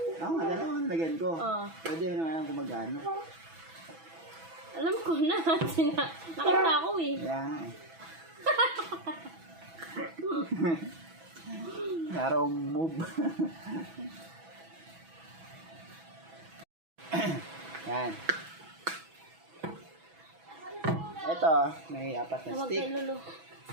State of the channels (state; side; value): late; left; 6.1 ms